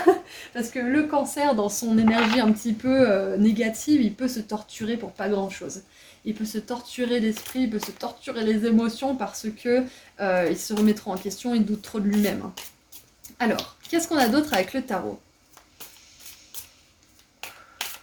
Parce que le cancer, dans son énergie un petit peu négative, il peut se torturer pour pas grand-chose. Il peut se torturer l'esprit, il peut se torturer les émotions parce que il se remet trop en question, il doute trop de lui-même. Alors, qu'est-ce qu'on a d'autre avec le tarot?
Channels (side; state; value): both; identical; correlation 1.00